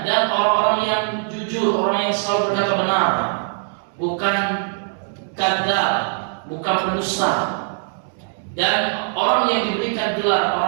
dan orang-orang yang jujur, orang yang selalu berkata benar, bukan kadzab, bukan pendusta. Dan orang yang diberikan gelar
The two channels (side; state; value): left; silent; digital silence